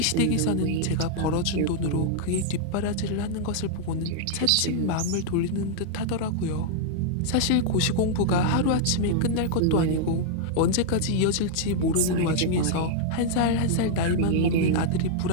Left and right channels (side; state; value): both; different; correlation -0.01